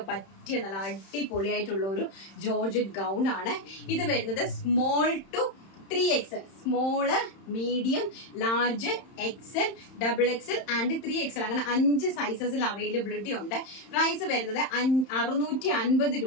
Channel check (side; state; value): right; late; 31 ms